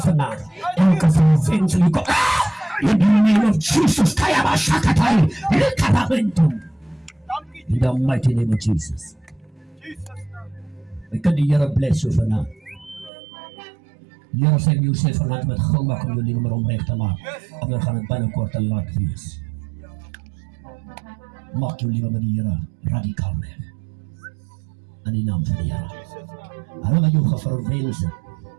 vanaand. Elke verwens, jy kom, in the name of Jesus, Kayaba Shakatai, Likabamentum. In the mighty name of Jesus. Ek kan die Here bless jou vanaand. Here sê jy sê vanaand met gou maak om jou lewe maar omreg te maak. Anders gaan dit binnekort te laat wees. Maak jou lewe met die Here radikaal weg. In die naam van die Here. Hulle wat jou geverwens het.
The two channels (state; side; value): drops out; left; at 13.1 s